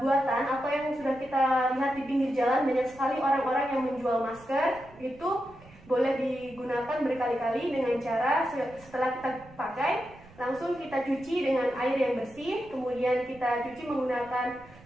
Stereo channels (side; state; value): right; noise; rumble, 23 dB below the sound